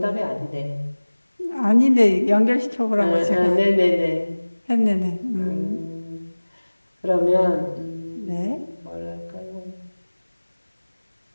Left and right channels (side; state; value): both; inverted; correlation -1.00